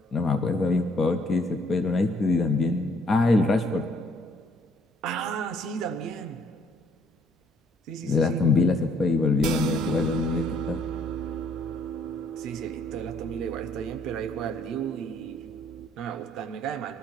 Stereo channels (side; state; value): both; normal; correlation 0.64